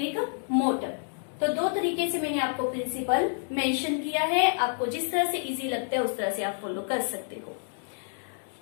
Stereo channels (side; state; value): right; silent; digital silence